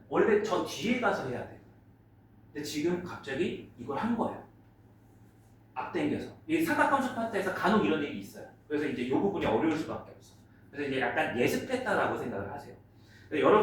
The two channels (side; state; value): both; identical; correlation 1.00